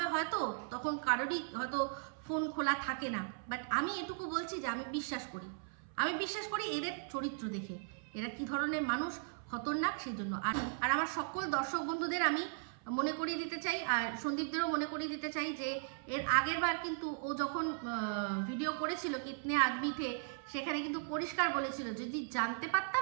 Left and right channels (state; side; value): silent; left; 53 dB below the other